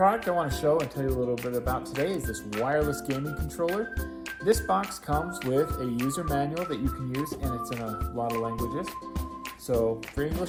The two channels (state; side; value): identical; both; correlation 1.00